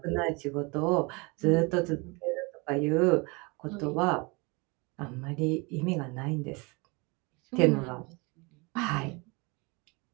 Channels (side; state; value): left; quieter; 28.2 dB